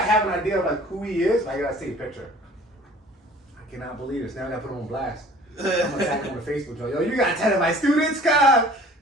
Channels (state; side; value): normal; both; correlation 0.49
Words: an idea of like who he is, but I gotta see a picture. I cannot believe this. Now I gotta put him on blast. I'm gonna tag him on the Facebook. Yo, you gotta tell my students, God.